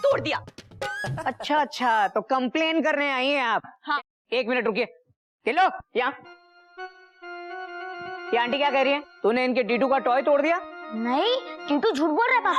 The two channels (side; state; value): both; identical; correlation 1.00